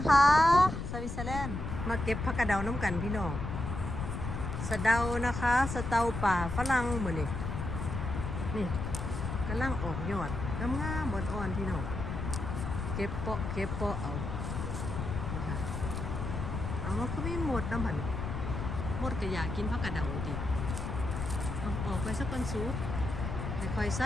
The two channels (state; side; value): noise; left; rumble, 4 dB below the sound